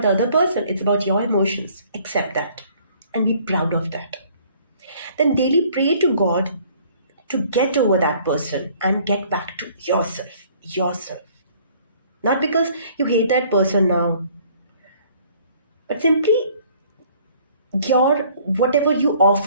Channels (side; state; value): both; inverted; correlation -0.57